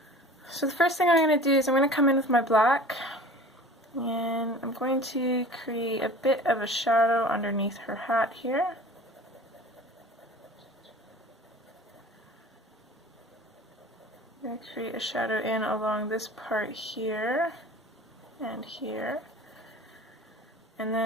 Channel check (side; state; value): both; normal; correlation 0.42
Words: So the first thing I'm going to do is I'm going to come in with my black and I'm going to create a bit of a shadow underneath her hat here. I'm going to create a shadow in along this part here and here. And